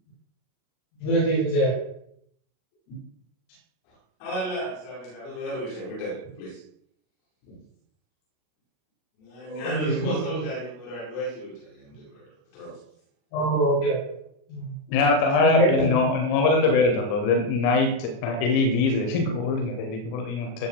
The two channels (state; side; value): late; right; 37 ms